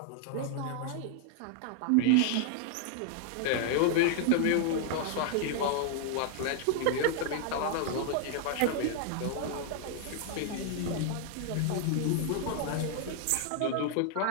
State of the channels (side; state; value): both; different; correlation 0.00